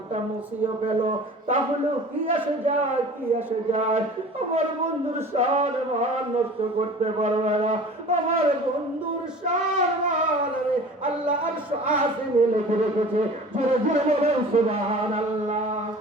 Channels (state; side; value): normal; both; correlation 0.42